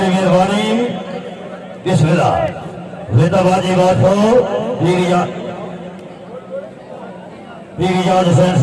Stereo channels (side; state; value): both; identical; correlation 1.00